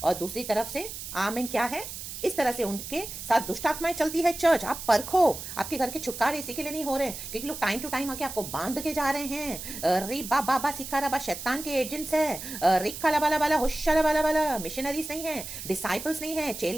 और दूसरी तरफ से आमीन क्या है, इस तरह से उनके साथ दुष्ट आत्माएं चलती है चर्च। आप परखो, आपके घर के छुटकारे इसी के लिए नहीं हो रहे हैं क्योंकि लोग टाइम टू टाइम आके आपको बांध के जा रहे हैं। री बाबा सिखा रबा, शैतान के एजेंट्स है। रिक्का लबाला बाला होशा बाला बाला, मिशनरीज नहीं है, डिसाइपल्स नहीं है,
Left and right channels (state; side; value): noise; right; hiss, 9 dB below the sound